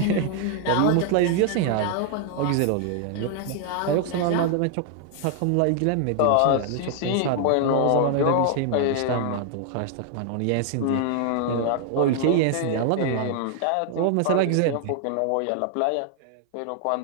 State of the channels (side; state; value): both; different; correlation 0.00